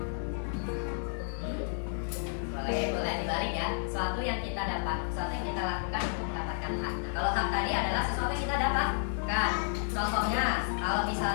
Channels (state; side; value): silent; right; 57 dB below the other